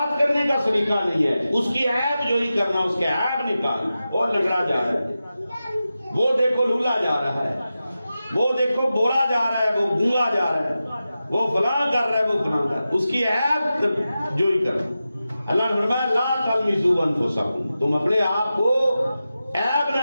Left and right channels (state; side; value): inverted; both; correlation -0.93